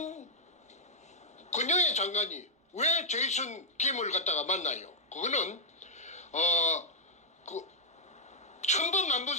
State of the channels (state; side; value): normal; both; correlation -0.06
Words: 권영애 장관이 왜 제이슨 김을 갖다가 만나요? 그거는 천번 만번